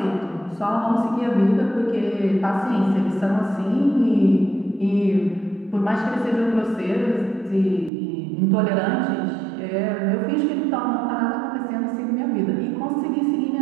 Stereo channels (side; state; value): left; drops out; at 7.9 s